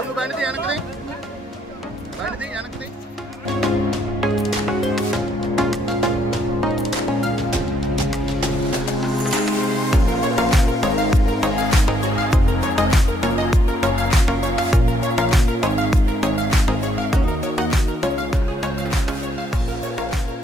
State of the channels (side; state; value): both; normal; correlation 0.72